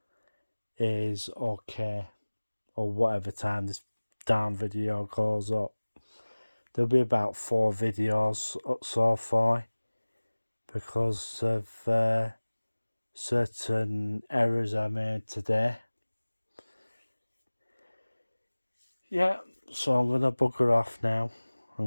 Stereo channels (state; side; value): inverted; both; correlation -1.00